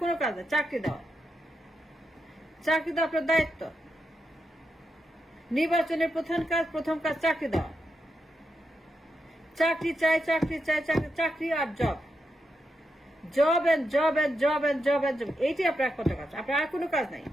কোনো কাজ না, চাকরি দেওয়া। চাকরি দেওয়া আপনার দায়িত্ব। নির্বাচনের প্রথম কাজ চাকরি দেওয়া। চাকরি চাই, চাকরি চাই, চাকরি আর job, job and job and job and job and job, এইটি আপনার একমাত্র কাজ। আপনার আর কোনো কাজ নাই।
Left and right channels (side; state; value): both; normal; correlation 0.85